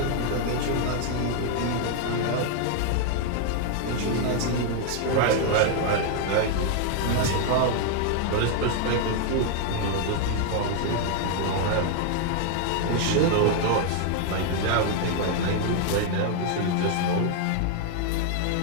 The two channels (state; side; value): different; both; correlation 0.00